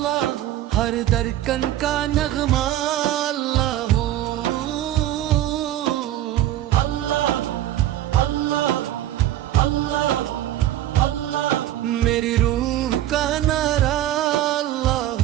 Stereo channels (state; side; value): quieter; left; 13.1 dB